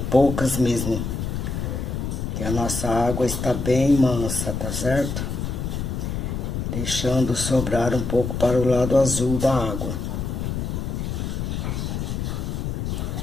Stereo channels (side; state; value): left; noise; rumble, 3 dB below the sound